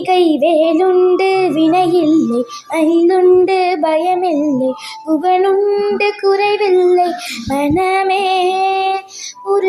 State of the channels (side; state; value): both; identical; correlation 1.00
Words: வேலுண்டு வினையில்லை, மயிலுண்டு பயமில்லை, புகனுண்டு குறைவில்லை மனமே.